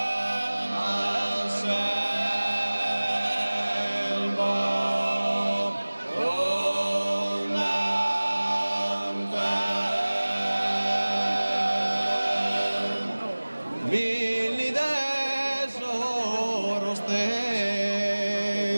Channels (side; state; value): both; inverted; correlation -1.00